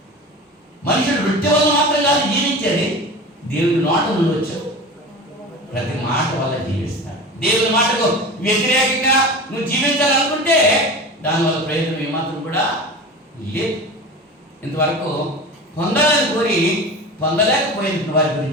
మనుషుడు వృత్తి వల్ల మాత్రం కాదు జీవించేది, దేవుని నోట నుండి వచ్చు ప్రతి మాట వల్ల జీవిస్తాడు. దేవుని మాటకు వ్యతిరేకంగా నువ్వు జీవించాలనుకుంటే దానివల్ల ప్రయోజనం ఏమాత్రం కూడా లేదు. ఇంతవరకు పొందాలని కోరి పొందలేకపోయిన వారి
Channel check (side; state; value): both; normal; correlation 0.32